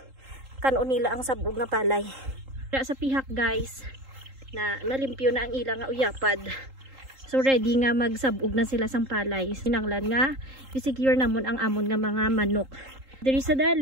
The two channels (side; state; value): left; late; 3.8 ms